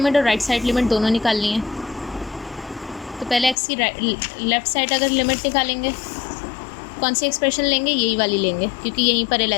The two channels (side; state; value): right; drops out; at 3.6 s